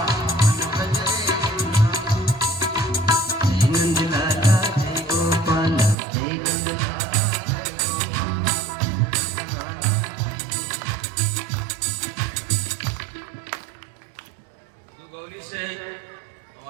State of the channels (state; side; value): drops out; left; at 6.0 s